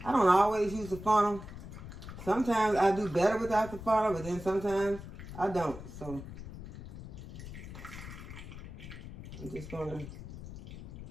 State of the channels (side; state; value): left; noise; rumble, 12 dB below the sound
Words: I don't always use a funnel. Sometimes I do better without the funnel, but then sometimes I don't. So I'm just going to